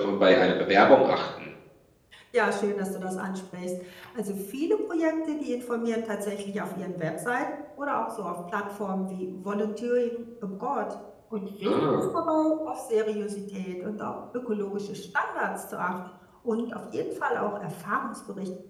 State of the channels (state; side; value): identical; both; correlation 1.00